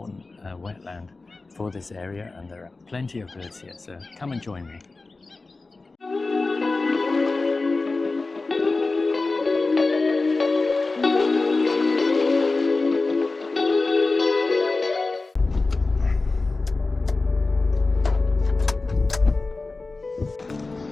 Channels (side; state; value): right; quieter; 3.6 dB